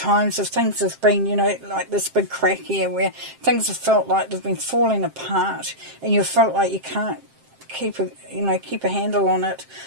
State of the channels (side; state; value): left; late; 7.6 ms